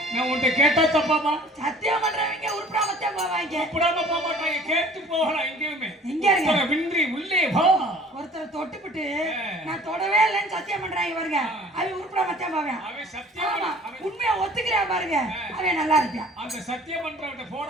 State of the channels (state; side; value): normal; both; correlation 0.49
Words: நான் உன்கிட்ட கேட்டா தப்பாமா? சத்தியம் பண்றவங்க உருப்படாமத்தே போவாங்க. உருப்படாம போக மாட்டாங்க. கேட்டு போகலாம் எங்கேயுமே. எங்க இருங்க? வின்றி உள்ளே வா. ஒருத்தர் தொட்டுப்பிட்டு நான் தொடவே இல்லைன்னு சத்தியம் பண்றாங்க பாருங்க. அவன் உருப்படாமத்தே போவேன். அவன் சத்தியம் உண்மையா ஒத்துக்கிறா பாருங்க. அவன் நல்லா இருப்பான். அந்த சத்தியம் பண்றவங்க